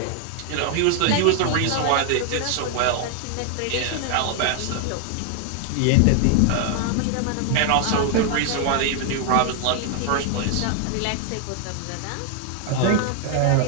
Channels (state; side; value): different; both; correlation 0.00